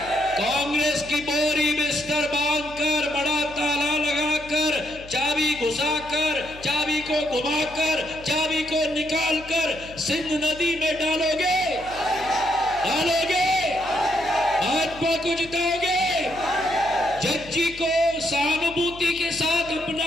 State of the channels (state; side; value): noise; left; hum, 18 dB below the sound